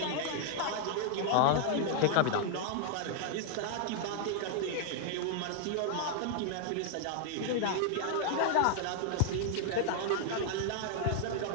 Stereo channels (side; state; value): both; different; correlation 0.00